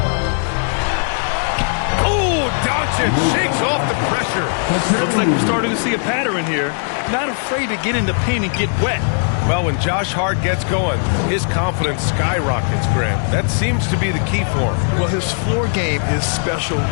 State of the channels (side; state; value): right; silent; digital silence